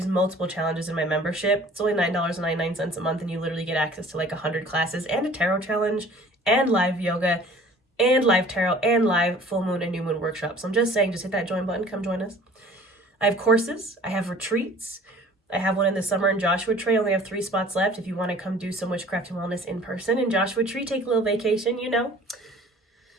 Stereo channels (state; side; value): normal; both; correlation 0.49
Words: multiple challenges in my membership. It's only $9.99 a month, and you literally get access to like 100 classes and a tarot challenge and live yoga and live tarot and live full moon and new moon workshops. So I'm just saying, just hit that join button. Come join us. I have courses. I have retreats. I have one in the summer in Joshua Tree. I only have 3 spots left. If you want to come do some witchcraft and wellness in person in Joshua Tree, take a little vacation,